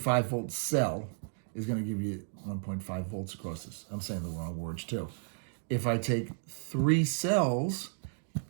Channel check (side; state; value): left; silent; digital silence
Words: volt cell is going to give you 1.5 volts across this. I'm saying the wrong words too. If I take 3 cells